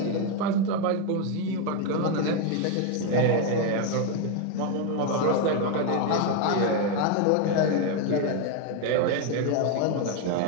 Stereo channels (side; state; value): both; different; correlation 0.01